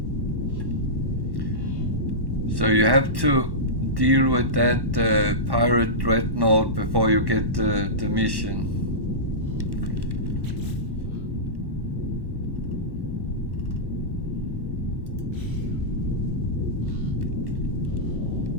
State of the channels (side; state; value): left; late; 1.1 ms